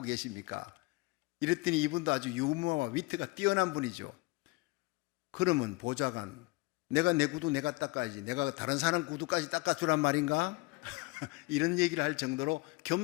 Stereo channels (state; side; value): quieter; right; 24.3 dB